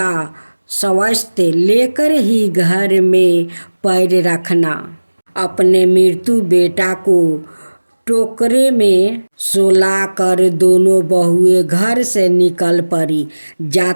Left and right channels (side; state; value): both; inverted; correlation -1.00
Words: स्वस्थ लेकर ही घर में पैर रखना। अपने मृत्यु बेटा को टोकरे में सुलाकर दोनों बहुएं घर से निकल पड़ी।